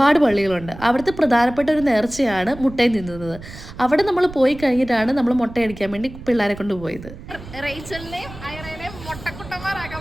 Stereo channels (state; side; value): noise; right; rumble, 15 dB below the sound